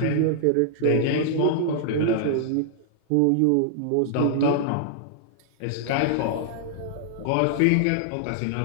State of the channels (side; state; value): both; different; correlation -0.01